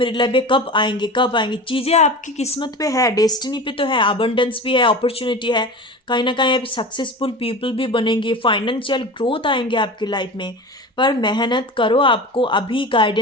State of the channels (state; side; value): normal; both; correlation 0.32